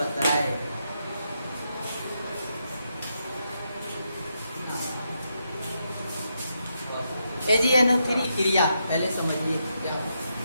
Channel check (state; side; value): inverted; both; correlation -0.82